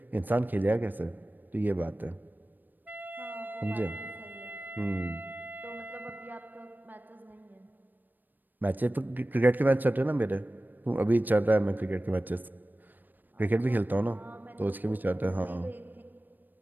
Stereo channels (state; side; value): late; left; 0.089 ms